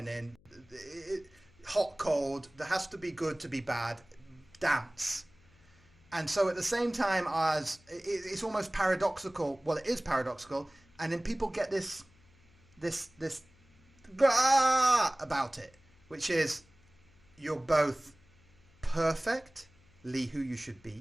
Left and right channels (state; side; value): noise; left; hum, 29 dB below the sound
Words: hot, cold. There has to be good to be bad. Dance. And so at the same time as it's almost paradoxical. Well, it is paradoxical, and then people get this about it, which is you're both perfectly who you should